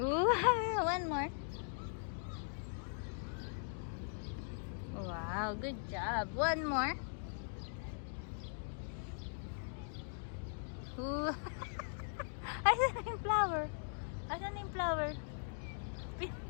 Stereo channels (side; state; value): right; silent; digital silence